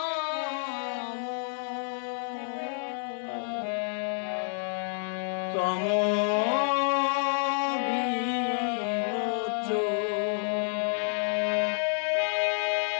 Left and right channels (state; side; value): silent; right; 57 dB below the other